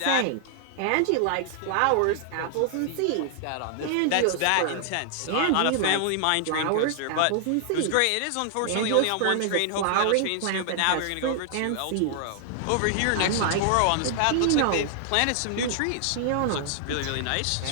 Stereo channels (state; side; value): different; both; correlation 0.00